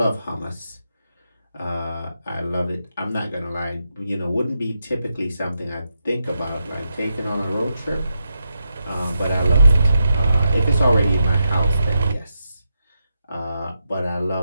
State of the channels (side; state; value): both; inverted; correlation -0.85